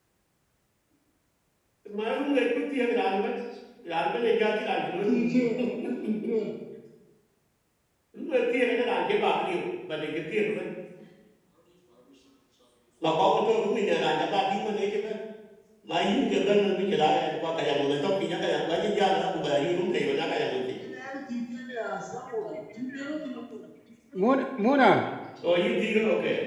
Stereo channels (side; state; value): both; identical; correlation 1.00